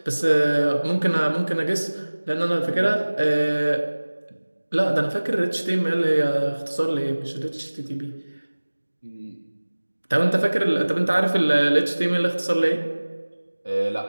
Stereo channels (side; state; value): both; inverted; correlation -1.00